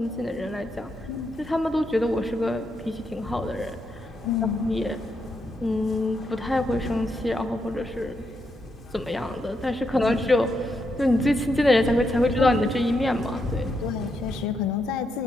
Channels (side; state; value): both; normal; correlation 0.81